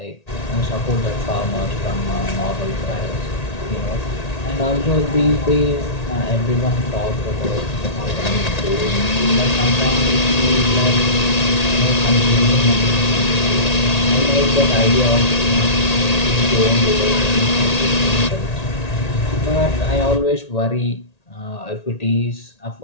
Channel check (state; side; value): late; right; 1.8 ms